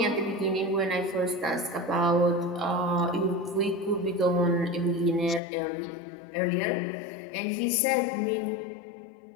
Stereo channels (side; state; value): right; drops out; at 5.4 s